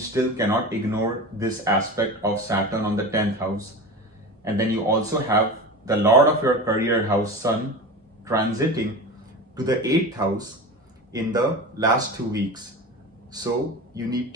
cannot ignore this aspect of Saturn on the 10th house. And then you also have the Lord of your career house, Sun, transiting to the 8th house in the last 2 weeks. So you need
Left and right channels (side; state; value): both; normal; correlation 0.29